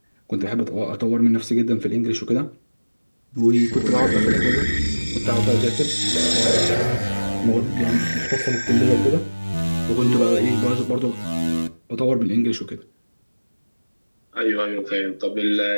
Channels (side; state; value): both; inverted; correlation -1.00